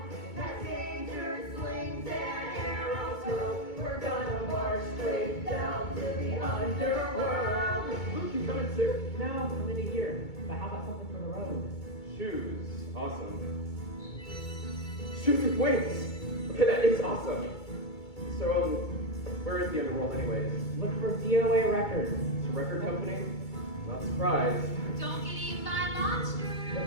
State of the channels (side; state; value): right; late; 2.3 ms